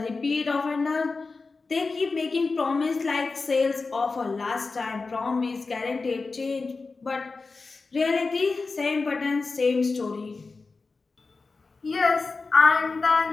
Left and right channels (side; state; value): right; quieter; 4.1 dB